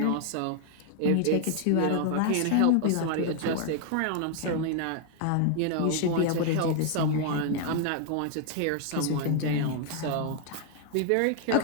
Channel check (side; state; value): both; different; correlation 0.00